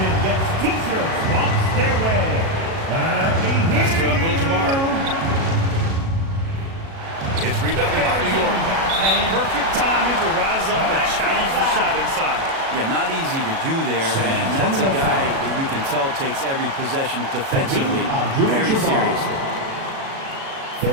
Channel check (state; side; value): late; left; 37 ms